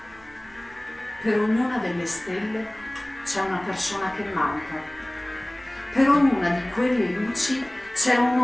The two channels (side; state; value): right; noise; rumble, 25 dB below the sound